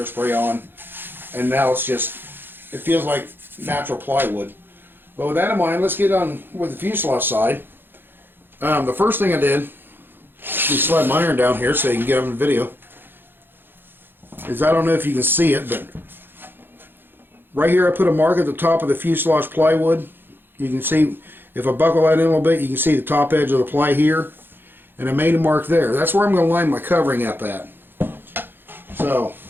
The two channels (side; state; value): left; late; 0.10 ms